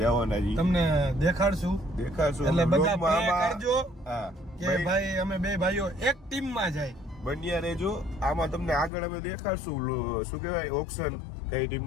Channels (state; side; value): drops out; right; at 8.9 s